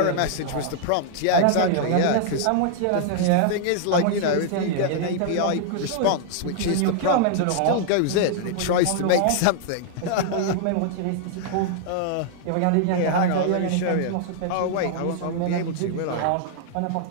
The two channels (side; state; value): both; different; correlation -0.01